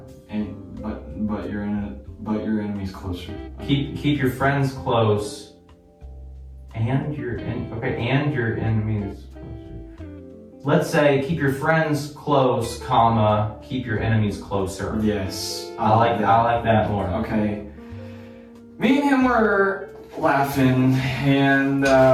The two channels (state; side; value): identical; both; correlation 1.00